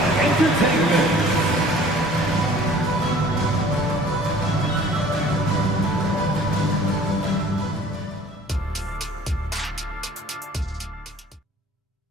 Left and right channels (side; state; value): both; normal; correlation 0.51